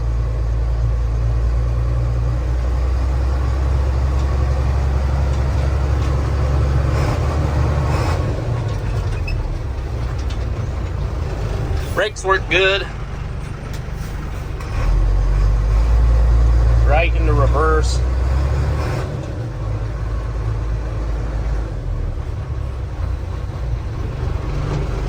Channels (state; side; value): identical; both; correlation 1.00